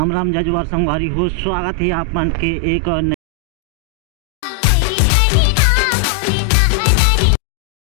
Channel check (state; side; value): drops out; right; at 3.2 s